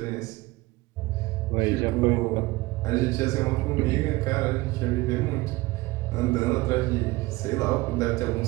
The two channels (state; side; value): quieter; left; 20.6 dB